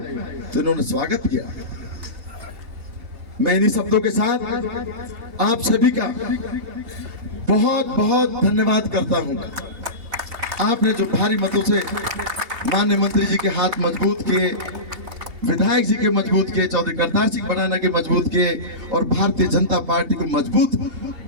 तो इन्होंने स्वागत किया। मैं इन्हीं शब्दों के साथ आप सभी का बहुत बहुत धन्यवाद करता हूं। आपने जो भारी मतों से माननीय मंत्री जी के हाथ मजबूत किए, विधायक जी के मजबूत किए, चौधरी करतार सिंह भड़ाना के मजबूत किए और भारतीय जनता पार्टी को मजबूत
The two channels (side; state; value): left; late; 2.7 ms